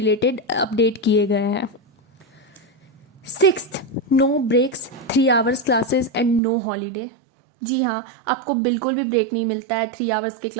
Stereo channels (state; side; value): drops out; left; at 6.4 s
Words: अपडेट किए गए हैं। Sixth, no breaks, 3 hours classes and no holiday. जी हाँ, आपको बिल्कुल भी ब्रेक नहीं मिलता है 3 आवर्स के